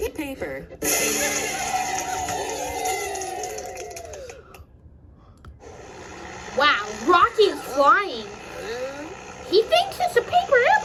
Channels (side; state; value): both; identical; correlation 1.00